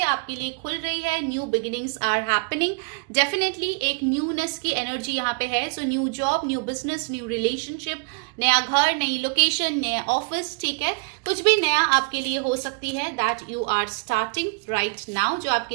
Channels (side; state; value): left; quieter; 32.9 dB